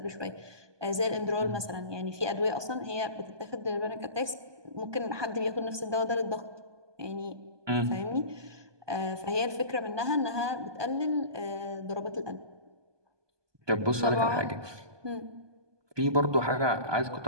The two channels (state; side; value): late; left; 1.2 ms